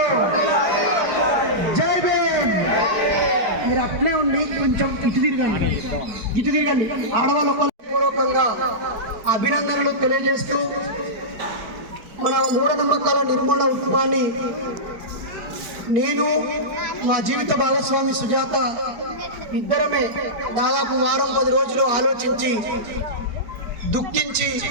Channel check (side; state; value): left; late; 4.8 ms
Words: జై భీమ్. మీరు అట్లే ఉండి కొంచెం ఇటు తిరగండి. ఆడవాళ్ళు పూర్వకంగా అభినందనలు తెలియజేస్తూ మన మూఢనమ్మకాల నిర్మూలన ఉద్యమాన్ని నేను మా జీవిత భాగస్వామి సుజాత ఇద్దరమే దాదాపు వారం 10 రోజులు ఆలోచించి దుఃఖించి